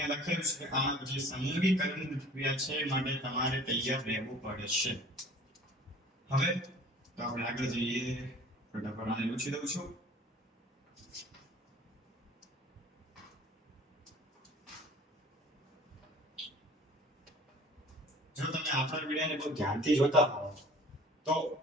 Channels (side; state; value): both; normal; correlation 0.48